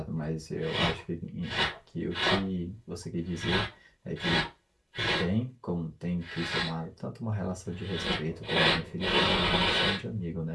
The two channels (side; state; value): both; identical; correlation 1.00